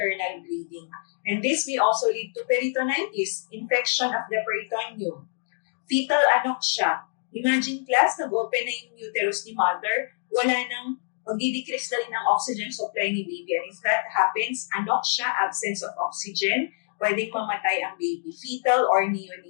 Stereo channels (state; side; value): silent; right; digital silence